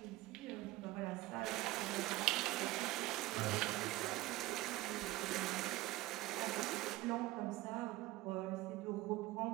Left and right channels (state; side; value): quieter; left; 17.9 dB